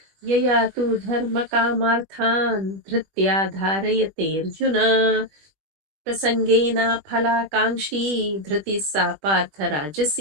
यया तु धर्मकामार्थान् धृत्या धारयते अर्जुन प्रसंगेन फलाकांक्षी धृति सा पार्थ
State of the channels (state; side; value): late; left; 20 ms